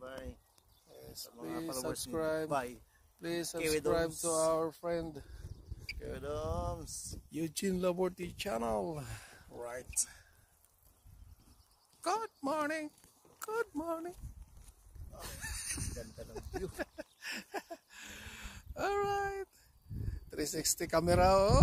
Yes, please subscribe. Please Kiwi subscribe Domes. to our friend Kiwi Domes. Eugene Laborty channel. Right. Good morning. Good morning. Ganda ng view. Alright. 360 camera.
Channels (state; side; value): identical; both; correlation 1.00